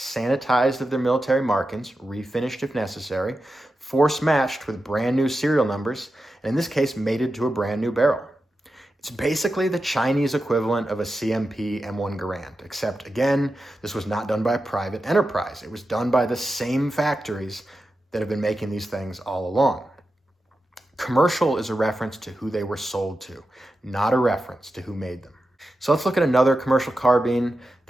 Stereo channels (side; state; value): both; normal; correlation 0.91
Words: of their military markings, refinished if necessary, force matched with brand new serial numbers, and in this case, mated to a brand new barrel. It's basically the Chinese equivalent of a CMP M1 Garand, except again, this was not done by a private enterprise. It was done by the same factories that have been making these things all along. Commercial is a reference to who they were sold to, not a reference to who made them. So let's look at another commercial carbine.